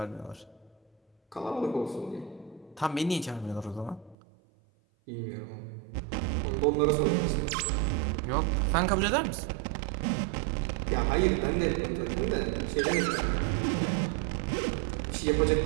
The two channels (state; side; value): drops out; left; at 4.2 s